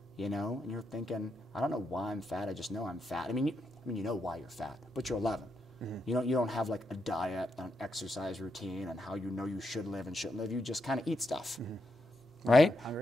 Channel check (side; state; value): both; normal; correlation 0.83